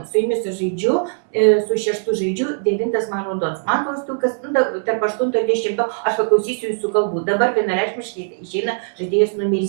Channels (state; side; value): silent; left; 66 dB below the other